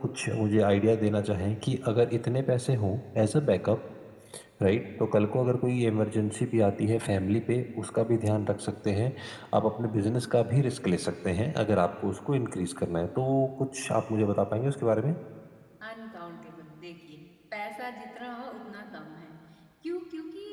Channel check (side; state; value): both; identical; correlation 1.00